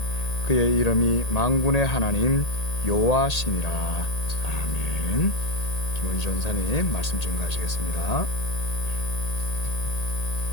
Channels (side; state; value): right; late; 1.8 ms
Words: 그의 이름이 만군의 하나님 여호와시니라. 아멘. 김원희 전사님 말씀 증거하시겠습니다.